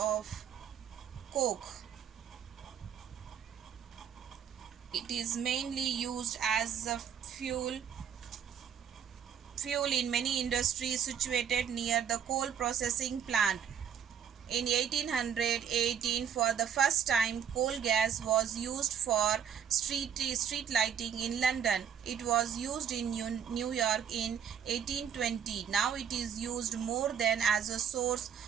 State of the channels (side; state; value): left; quieter; 8.2 dB